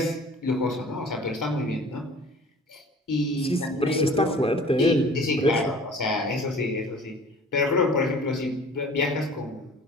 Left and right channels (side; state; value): both; normal; correlation 0.47